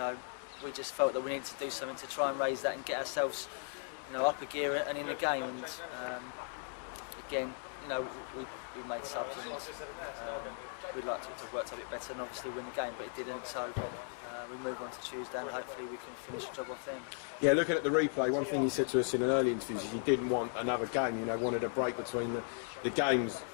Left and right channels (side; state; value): right; silent; 53 dB below the other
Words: we just felt that we needed to do something to try and raise that and get ourselves up a gear and in the game. And again, we made subs, and we'd like to have worked a bit better and obviously win the game, but it didn't. So we move on to Tuesday, and hopefully we can finish the job off then. Yeah, looking at the replay, one thing you said to us in an early interview is you didn't want another game. Wanted a break between the games.